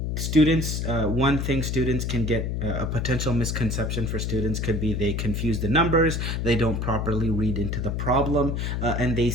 students, one thing students can get, a potential misconception for students could be they confuse the numbers, they don't properly read into the problem, and they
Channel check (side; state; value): left; noise; hum, 1 dB below the sound